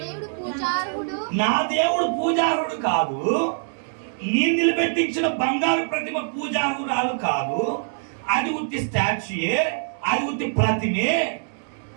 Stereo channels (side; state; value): left; silent; digital silence